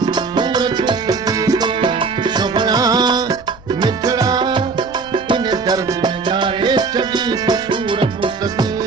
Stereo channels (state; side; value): quieter; left; 4.5 dB